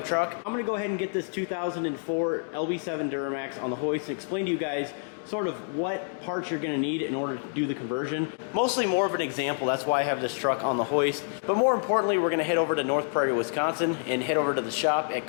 truck. I'm gonna go ahead and get this 2004 LB7 Duramax on the hoist and explain to you guys sort of what parts you're gonna need in order to do the conversion. Mostly more of an example, that's why I have this truck on the hoist. But more importantly, we're gonna head over to North Prairie, Wisconsin and head over to the shop at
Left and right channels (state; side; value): silent; right; digital silence